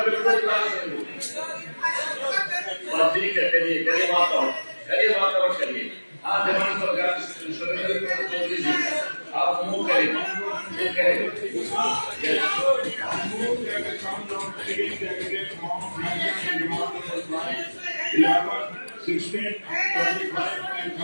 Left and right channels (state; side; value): inverted; both; correlation -1.00